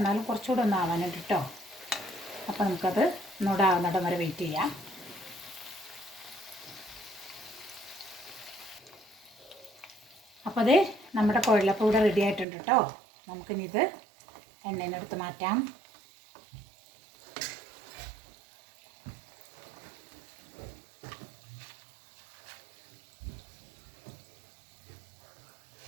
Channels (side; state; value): left; drops out; at 12.5 s